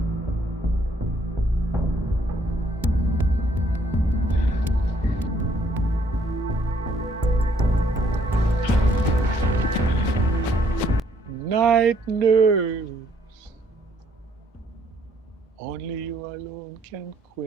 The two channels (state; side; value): normal; both; correlation 0.67